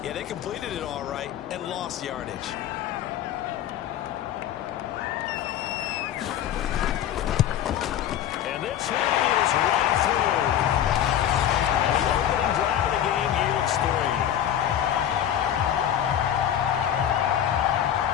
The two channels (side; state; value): right; quieter; 10.6 dB